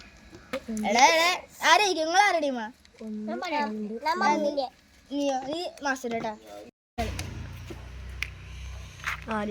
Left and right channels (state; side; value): identical; both; correlation 1.00